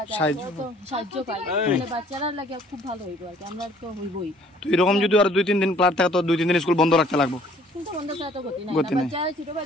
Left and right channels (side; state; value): both; normal; correlation 0.58